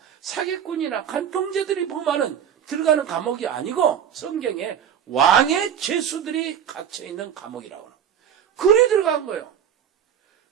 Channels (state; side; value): quieter; left; 8.8 dB